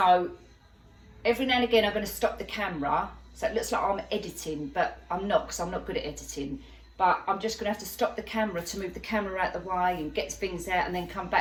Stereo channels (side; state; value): both; identical; correlation 1.00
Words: every now and again I'm going to stop the camera So it looks like I'm editing, but I'm not, because I'm not good at editing. But I'm just going to have to stop the camera to move the camera out the way and get things out and then come